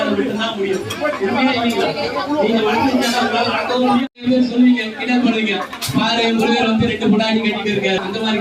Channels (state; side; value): identical; both; correlation 1.00